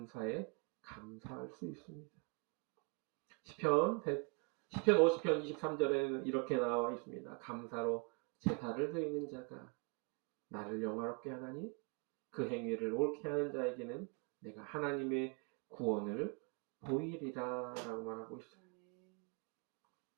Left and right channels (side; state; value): left; quieter; 32.6 dB